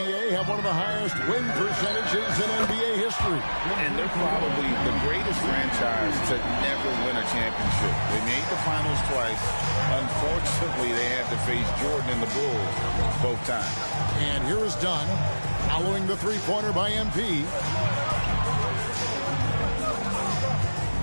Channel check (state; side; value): inverted; both; correlation -1.00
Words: have one of the highest win percentages in NBA history. And they're probably the greatest franchise to never win a championship. They made the finals twice. Unfortunately, they had to face Jordan and the Bulls both times. And here is Dunn, following the three-pointer by MP.